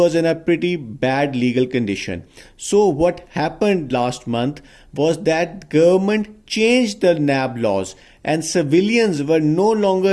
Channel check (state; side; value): identical; both; correlation 1.00